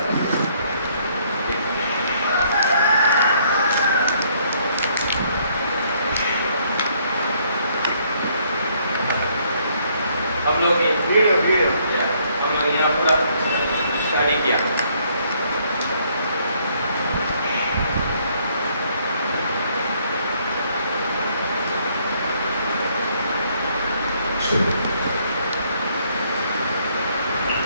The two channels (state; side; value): inverted; both; correlation -0.67